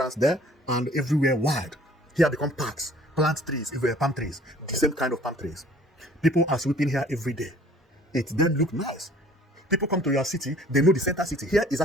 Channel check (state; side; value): normal; both; correlation 0.53